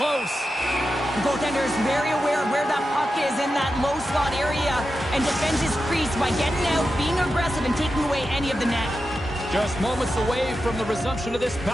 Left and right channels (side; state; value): both; normal; correlation 0.90